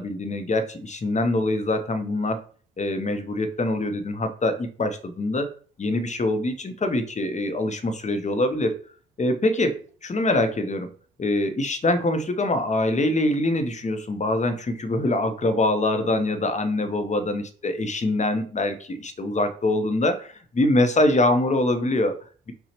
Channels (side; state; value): both; normal; correlation 0.57